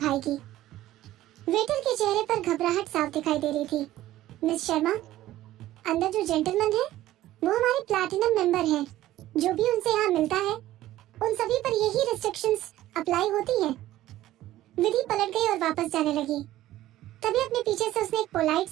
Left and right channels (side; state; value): left; quieter; 14.6 dB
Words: वेटर के चेहरे पर घबराहट साफ दिखाई दे रही थी। मिस शर्मा, अंदर जो जेंटलमैन है वो हमारे प्लैटिनम मेंबर हैं। जो भी उनसे यहाँ मिलता है उन सभी पर यही रिस्ट्रिक्शंस अप्लाई होती हैं। विधि पलट गई और वापस जाने लगी। तभी अपने पीछे से उसने एक पोलाइट